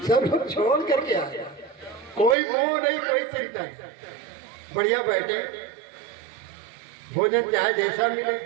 सब लोग छोड़ करके आए, कोई मोह नहीं, कोई चिंता नहीं, बढ़िया बैठे, भोजन चाहे जैसा मिले,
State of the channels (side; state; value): left; drops out; at 2.4 s